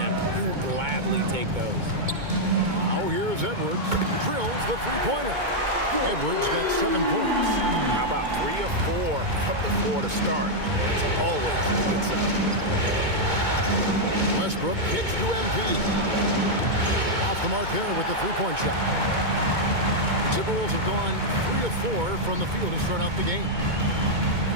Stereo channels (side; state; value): left; late; 2.2 ms